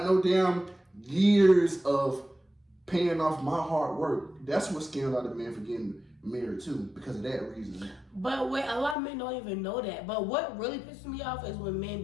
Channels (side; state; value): right; drops out; at 9.0 s